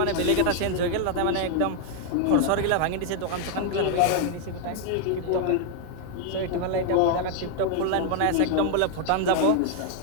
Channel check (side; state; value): both; different; correlation 0.00